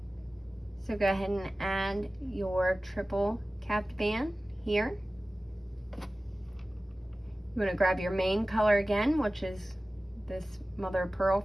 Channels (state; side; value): normal; both; correlation 0.97